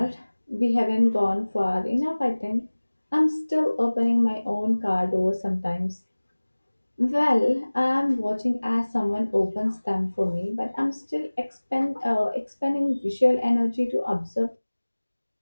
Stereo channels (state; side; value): inverted; both; correlation -1.00